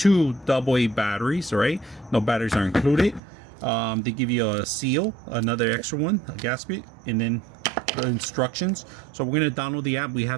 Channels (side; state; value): left; drops out; at 3.2 s